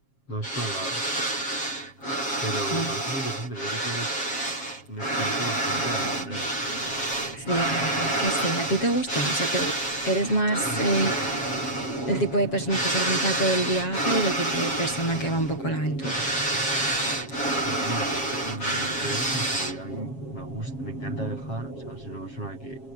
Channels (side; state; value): right; late; 7.4 ms